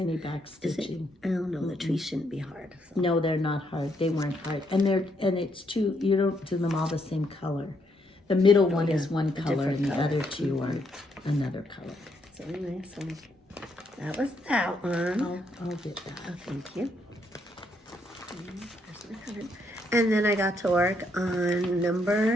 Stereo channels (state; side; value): normal; both; correlation 0.75